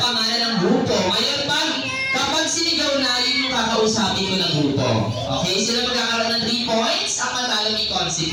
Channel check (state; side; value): identical; both; correlation 1.00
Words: pangalan ng grupo. Ngayon, kapag sinigaw na, yun yung kakausapin ko ng grupo. Okay? Sila magkakaroon ng 3 points, ang matalo may